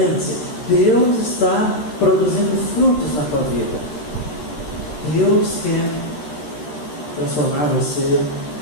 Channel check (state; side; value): late; right; 13 ms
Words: Deus está produzindo frutos na tua vida. Deus quer transformar você